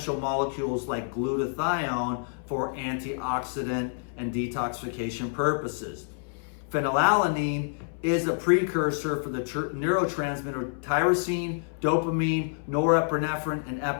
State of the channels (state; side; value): silent; right; 59 dB below the other